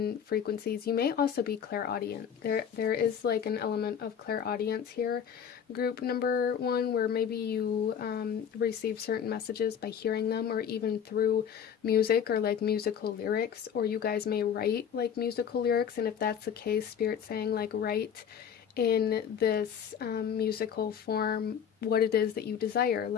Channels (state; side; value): quieter; right; 8.1 dB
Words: frequencies. You may also be clairaudient. There is like an element of clairaudience here, group number one, where maybe you receive certain messages by hearing them, or even through music or like musical lyrics, or you guys may write like musical lyrics. And if that's the case, Spirit's saying like write in this musical form what it is that you desire,